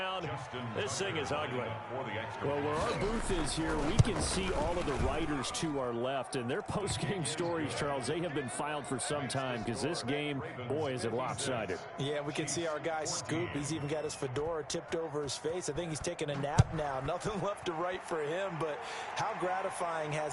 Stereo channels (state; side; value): identical; both; correlation 1.00